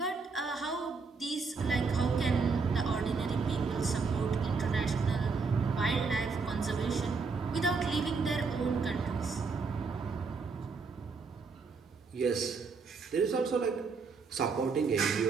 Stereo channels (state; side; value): quieter; left; 4.7 dB